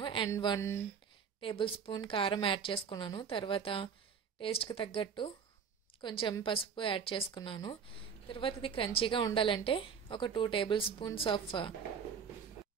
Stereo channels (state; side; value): quieter; left; 6.6 dB